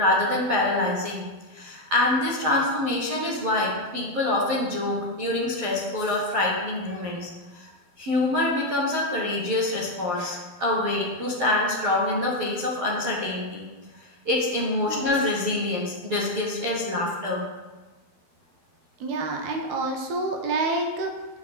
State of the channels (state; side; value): late; left; 11 ms